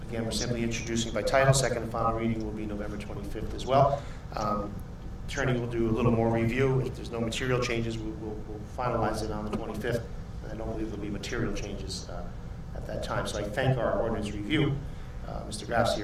again, we're simply introducing by title. Second and final reading will be November 25th as well. Attorney will do a little more review. If there's no material changes, we'll finalize it on the 25th. And I don't believe there'll be material changes at that time. So I thank our ordinance review. Mr. Graff's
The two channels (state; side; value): identical; both; correlation 1.00